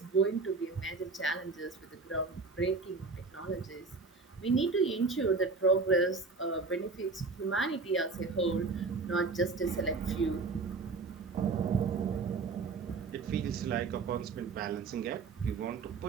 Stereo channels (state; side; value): quieter; left; 4.2 dB